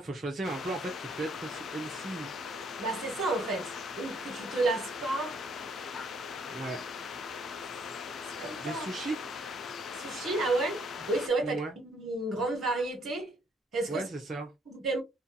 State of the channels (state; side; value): normal; both; correlation 0.66